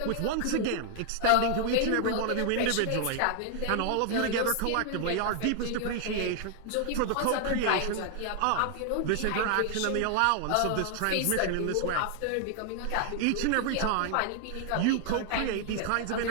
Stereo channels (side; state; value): both; different; correlation 0.00